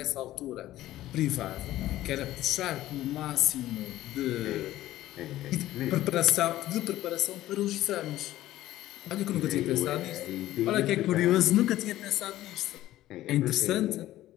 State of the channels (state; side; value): quieter; right; 14.8 dB